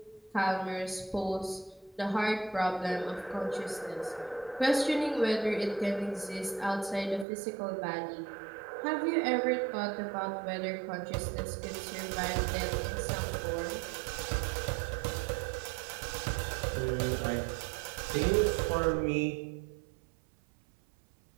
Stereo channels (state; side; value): drops out; left; at 7.2 s